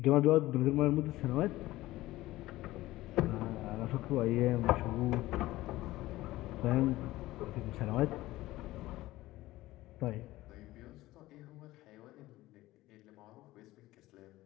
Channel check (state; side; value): quieter; right; 17.2 dB